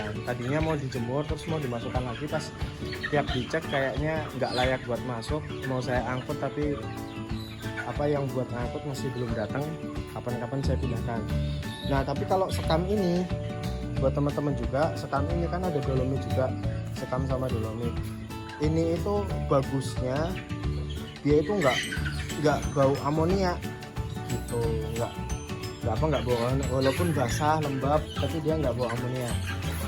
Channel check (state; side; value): identical; both; correlation 1.00